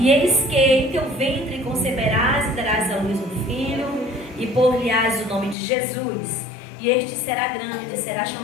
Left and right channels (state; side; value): drops out; right; at 5.6 s